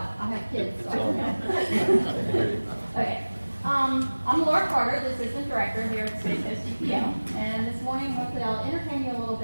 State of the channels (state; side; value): inverted; both; correlation -1.00